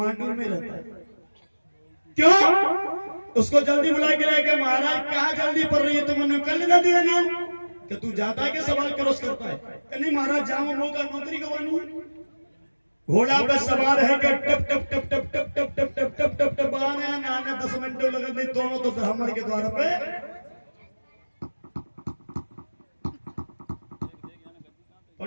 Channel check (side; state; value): both; inverted; correlation -1.00